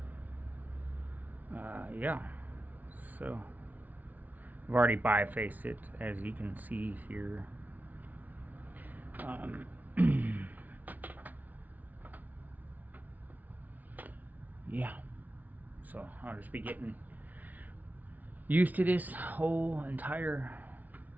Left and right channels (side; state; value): left; late; 0.077 ms